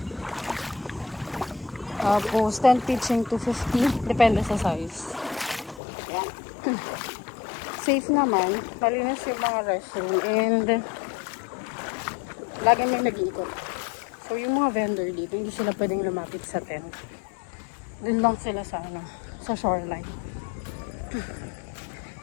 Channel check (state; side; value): drops out; right; at 5.8 s